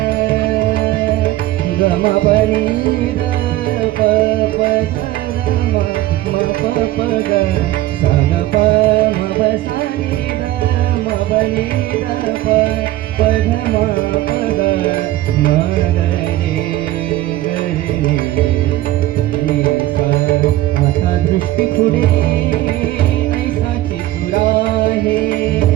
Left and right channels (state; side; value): quieter; left; 15.8 dB